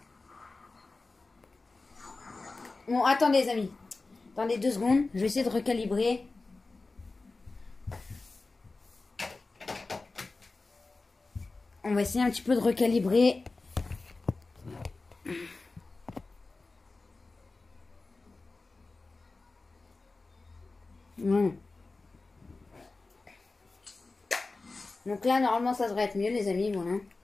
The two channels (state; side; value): quieter; right; 3.6 dB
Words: Bon, attendez, les amis. Attendez 2 secondes. Je vais essayer de recalibrer. On va essayer un petit peu de recalibrer. Donc là, normalement, ça devrait être mieux, les amis. Voilà.